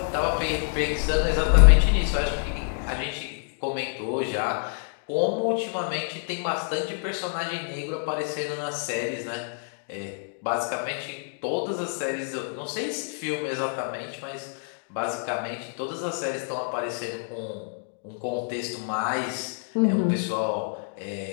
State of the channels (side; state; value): right; silent; 60 dB below the other